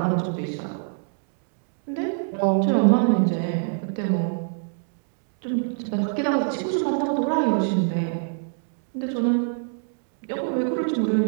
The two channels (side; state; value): left; silent; digital silence